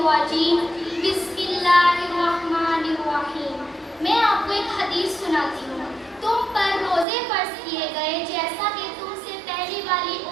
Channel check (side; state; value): left; drops out; at 7.1 s